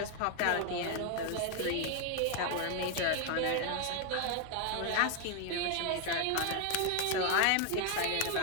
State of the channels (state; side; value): different; both; correlation 0.00